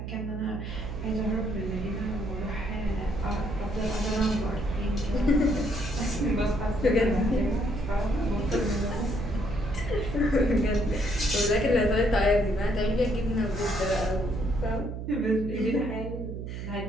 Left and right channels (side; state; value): right; noise; hum, 7 dB below the sound